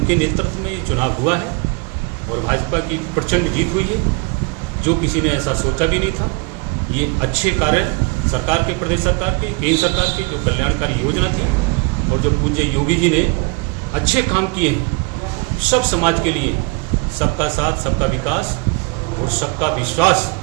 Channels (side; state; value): left; quieter; 29.8 dB